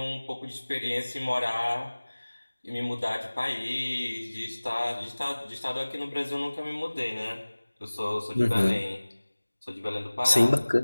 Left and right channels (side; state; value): both; inverted; correlation -1.00